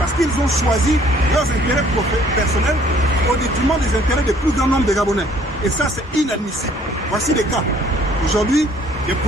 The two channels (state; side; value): normal; both; correlation 0.59